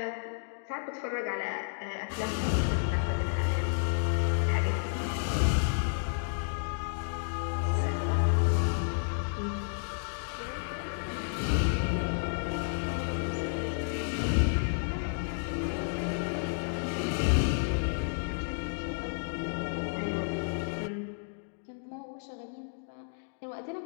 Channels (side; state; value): right; silent; digital silence